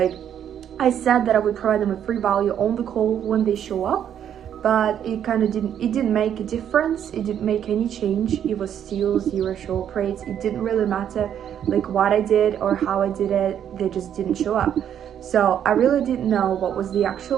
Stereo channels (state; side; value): quieter; left; 9.5 dB